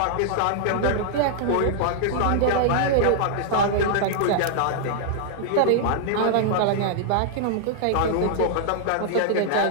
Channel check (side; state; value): both; different; correlation -0.01